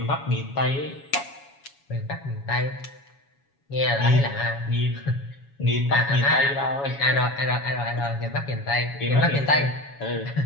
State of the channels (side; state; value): right; late; 7.2 ms